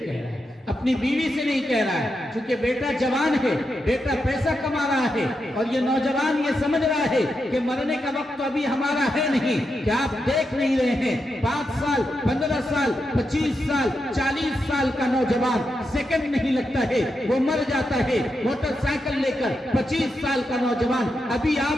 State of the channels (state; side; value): normal; both; correlation 0.86